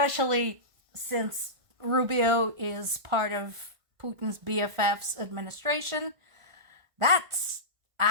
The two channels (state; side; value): late; left; 1.5 ms